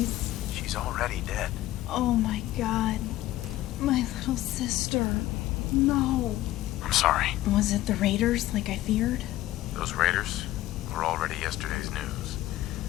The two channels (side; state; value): right; quieter; 15.3 dB